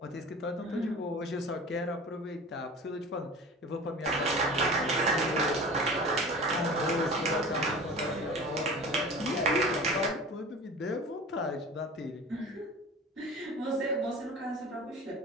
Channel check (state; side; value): normal; both; correlation 0.38